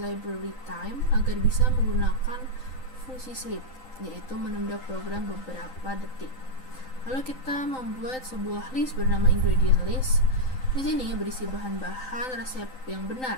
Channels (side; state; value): right; late; 3.9 ms